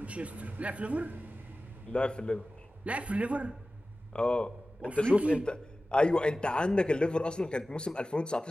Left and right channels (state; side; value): normal; both; correlation 0.96